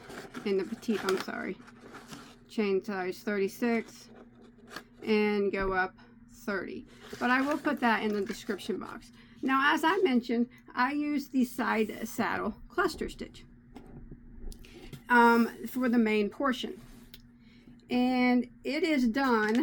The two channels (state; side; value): identical; both; correlation 1.00